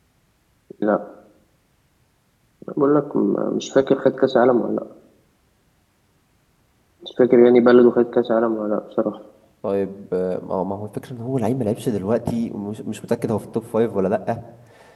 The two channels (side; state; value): both; identical; correlation 1.00